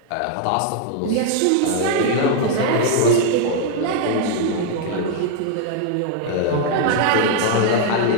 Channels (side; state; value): both; different; correlation 0.00